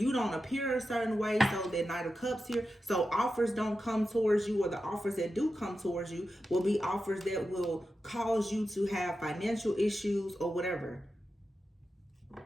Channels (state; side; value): normal; both; correlation 0.91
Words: you don't appear a certain way, so that Knight of Cups here, so offers don't come towards you, or the offers that do come towards you will be offers that will cause you to have financial issues or whatever.